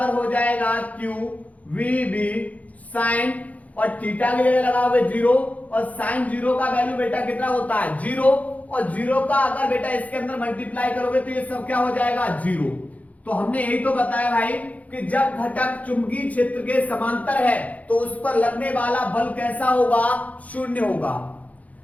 हो जाएगा Q V B sin, और थीटा की जगह लगाओगे 0, और साइन 0 का वैल्यू बेटा कितना होता है? 0, और 0 का अगर बेटा इसके अंदर मल्टीप्लाई करोगे तो ये सब क्या हो जाएगा? 0। तो हमने यही तो बताया भाई कि जब घटक चुंबकीय क्षेत्र के समांतर है तो उस पर लगने वाला बल कैसा होगा? 0 होगा।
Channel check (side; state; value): right; late; 0.071 ms